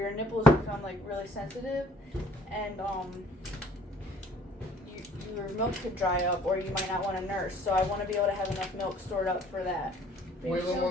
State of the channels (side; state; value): both; normal; correlation 0.56